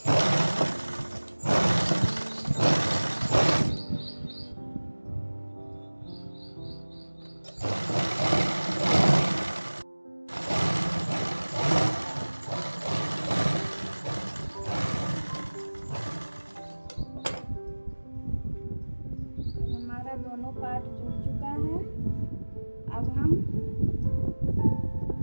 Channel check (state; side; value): inverted; both; correlation -1.00